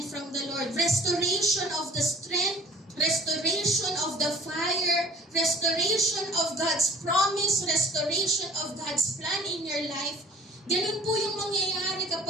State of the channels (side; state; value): both; normal; correlation 0.50